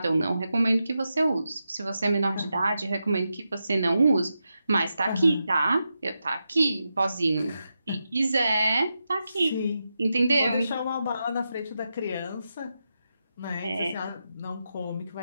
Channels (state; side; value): inverted; both; correlation -0.88